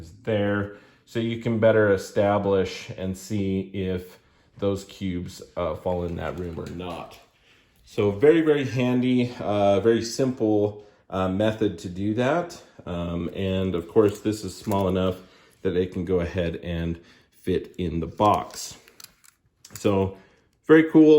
there. So you can better establish and see if those cubes fall in that room or not. So very, very handy, very simple method to do that. And of course, this is small enough that it can go ahead and fit in the box. So very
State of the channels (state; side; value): identical; both; correlation 1.00